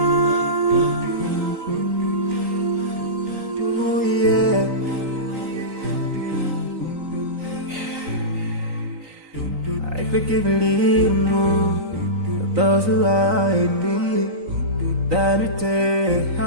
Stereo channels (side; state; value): left; late; 3.9 ms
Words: forgive and leave those who are in need. That you take